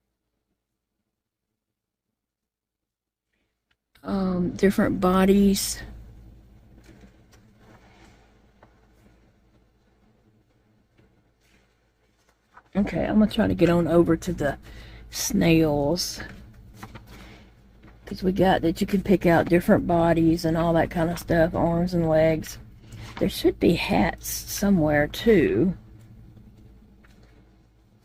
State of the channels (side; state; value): both; identical; correlation 1.00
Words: Different bodies. Okay, I'm gonna try to get on over to the snails, because we got that you can pick out different bodies and all that kind of stuff, arms and legs. There should be hats somewhere too.